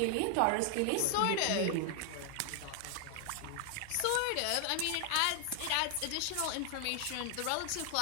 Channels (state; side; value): different; both; correlation 0.00